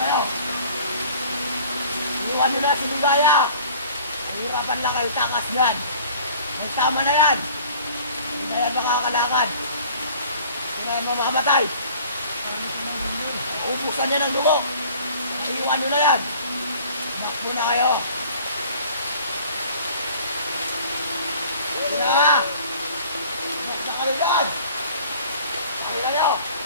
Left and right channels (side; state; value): both; inverted; correlation -0.49